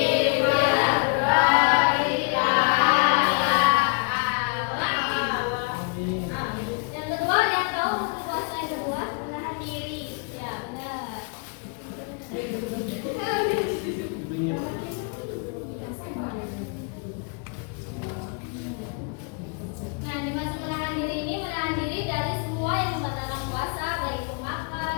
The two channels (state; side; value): quieter; right; 35.8 dB